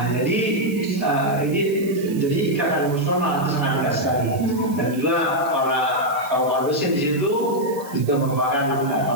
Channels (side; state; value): right; noise; hiss, 18 dB below the sound